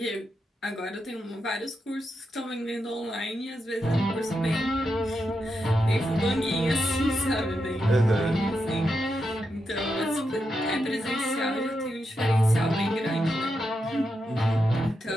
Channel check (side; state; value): both; normal; correlation 0.85